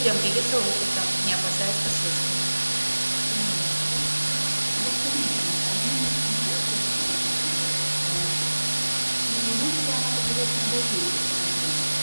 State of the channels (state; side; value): inverted; both; correlation -1.00